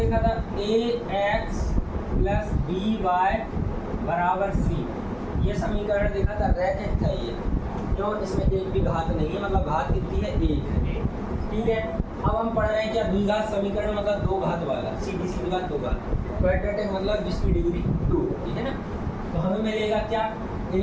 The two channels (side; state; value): both; identical; correlation 1.00